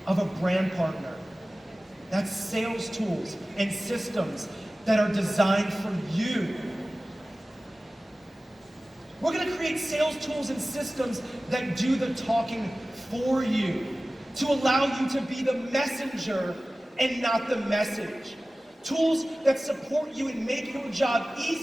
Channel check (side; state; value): both; normal; correlation 0.97